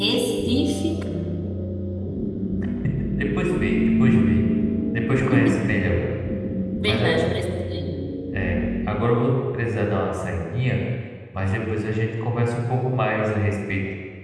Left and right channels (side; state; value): both; identical; correlation 1.00